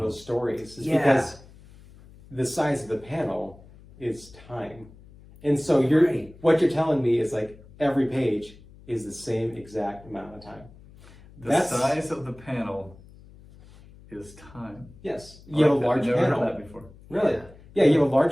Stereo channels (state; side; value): noise; left; hum, 22 dB below the sound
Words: those stories. Is Yeah. because the size of the panel is time. And so you're Right. what you're telling me is like every page is the same exact amount of time. The That's- size of the panel is time. Yes. You have a I've large never panel. heard that before. Really? Yeah. Yeah, you have a